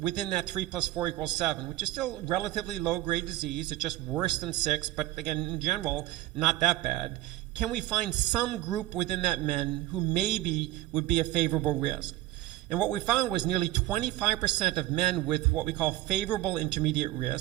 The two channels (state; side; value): quieter; left; 15.9 dB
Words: that 3 + 4 = 7, which is still relatively low-grade disease. It's just worse than 6, but again, in general, not that bad. Can we find some group within that men who maybe would be a favorable risk? And what we found was nearly 25% of men with what we call favorable intermediate